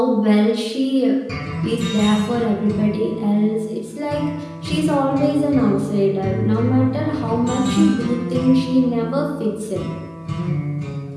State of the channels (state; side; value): identical; both; correlation 1.00